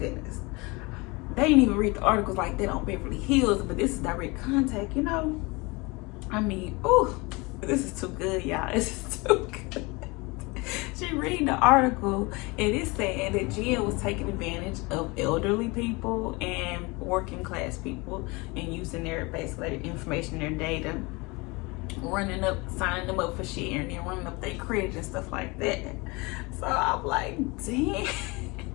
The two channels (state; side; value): quieter; right; 25.8 dB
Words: They didn't even read the articles like that on Beverly Hills, but this is direct contact, you know? I mean, ooh, this is too good, y'all. This is too good. She read the article and it's saying that Jen was taking advantage of elderly people and working class people and using their basically their information, their data, signing them up for share and then running up their credit and stuff like that. So I'm like, damn.